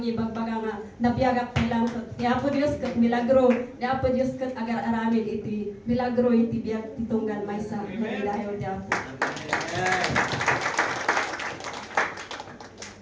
nga napiyagak lang ni Apo Dios kat milagro ni Apo Dios kat agar aramid iti milagro iti biyag titunggan may sa magidayo di Apo.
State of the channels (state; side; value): identical; both; correlation 1.00